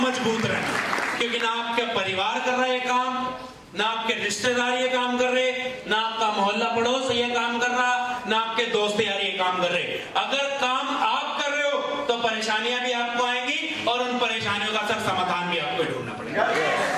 मजबूत रहें, क्योंकि ना आपके परिवार कर रहे हैं काम, ना आपके रिश्तेदार ये काम कर रहे, ना आपका मोहल्ला पड़ोस ये काम कर रहा, ना आपके दोस्त यार ये काम कर रहे। अगर काम आप कर रहे हो तो परेशानियां भी आपको आएंगी, और उन परेशानियों का सर समाधान भी आपको ढूंढना पड़ेगा।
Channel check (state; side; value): identical; both; correlation 1.00